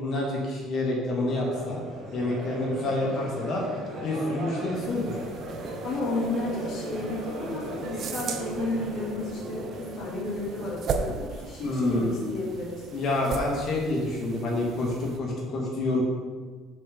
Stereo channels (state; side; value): normal; both; correlation 0.57